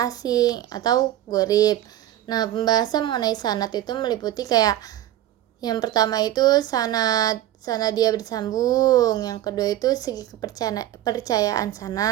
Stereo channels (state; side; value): quieter; left; 13.1 dB